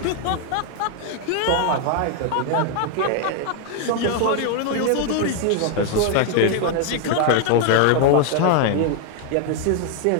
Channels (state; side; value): different; both; correlation 0.00